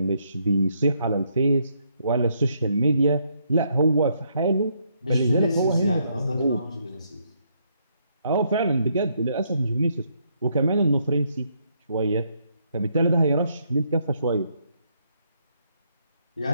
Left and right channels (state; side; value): inverted; both; correlation -0.74